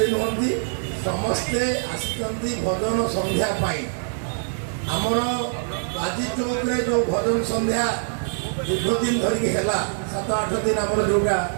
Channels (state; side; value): silent; left; digital silence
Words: ନୁହନ୍ତି, ସମସ୍ତେ ଆସିଛନ୍ତି ଭଜନ ସନ୍ଧ୍ୟା ପାଇଁ। ଆମର ବାଜି ଚୌକରେ ଯେଉଁ ଭଜନ ସନ୍ଧ୍ୟା ଦୀର୍ଘ ଦିନ ଧରିକି ହେଲା, 7-8 ଦିନ ଆମର ଯେଉଁଟା,